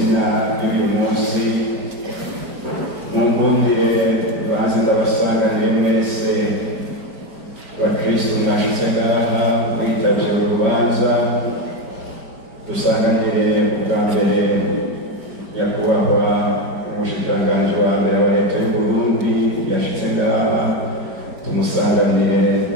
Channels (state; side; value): late; left; 5.2 ms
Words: y'uyu munsi, munkundire baze ndabasanganire mwese bakristo mwashitse ngaha mwitavye urubanza, dusanganire ubwa mbere nyakubahwa umushikiranganji wa mbere wa leta y'u Burundi yashitse ngaha, tumusanganire